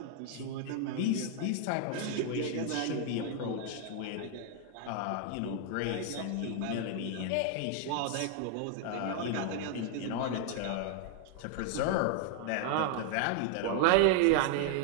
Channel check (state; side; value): different; both; correlation 0.00